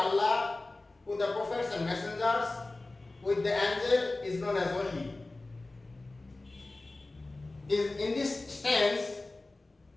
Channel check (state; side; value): quieter; right; 3.1 dB